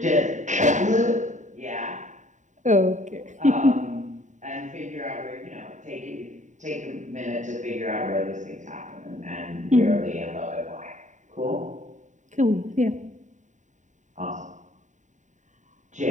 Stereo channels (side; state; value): left; late; 0.36 ms